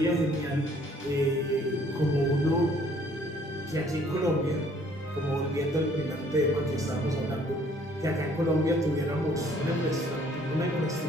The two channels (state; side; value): normal; both; correlation 0.60